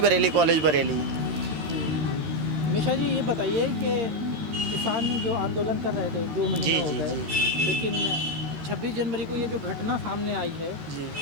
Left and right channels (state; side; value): late; left; 13 ms